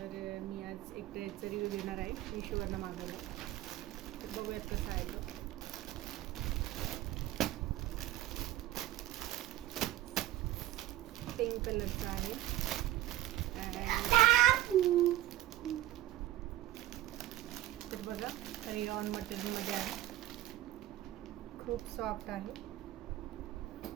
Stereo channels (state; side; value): quieter; left; 14.3 dB